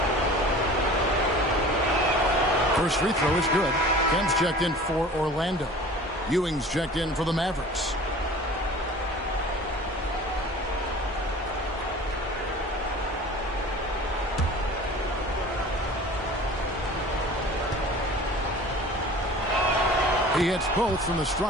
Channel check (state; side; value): normal; both; correlation 0.42